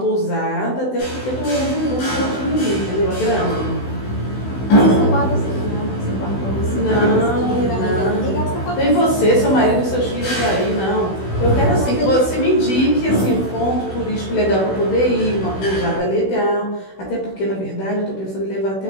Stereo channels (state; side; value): late; right; 16 ms